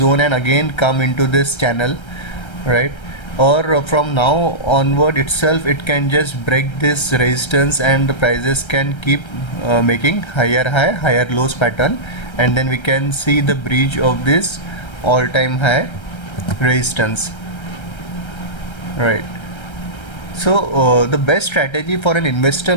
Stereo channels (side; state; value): right; late; 1.3 ms